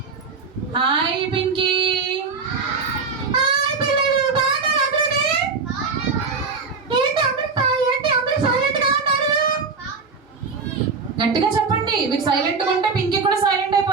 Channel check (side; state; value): left; quieter; 4.8 dB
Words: హాయ్ పింకీ. గట్టిగా చెప్పండి. మీరు సైలెంట్ గా ఉంటే పింకీ కూడా సైలెంట్